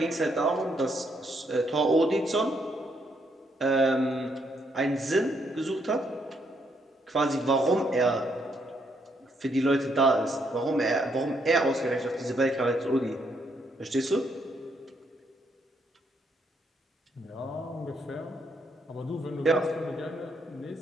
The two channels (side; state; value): both; normal; correlation 0.74